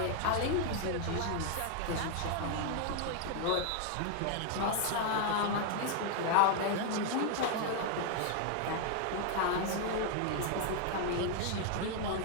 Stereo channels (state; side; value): different; both; correlation 0.00